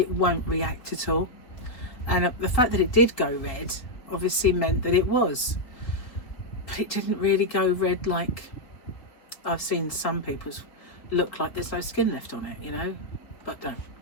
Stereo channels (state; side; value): late; right; 3.8 ms